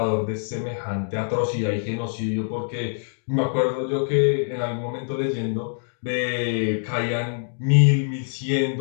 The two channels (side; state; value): right; silent; digital silence